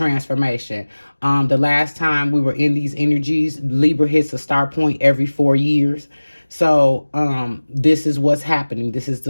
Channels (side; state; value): both; inverted; correlation -1.00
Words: The last time we were in these energies, Libra hits a start point every 4 years. So this is what's happening. This is